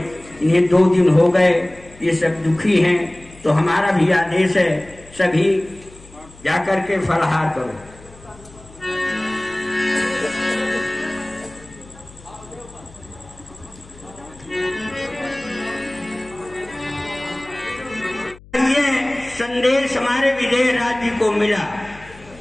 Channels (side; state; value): left; noise; hum, 22 dB below the sound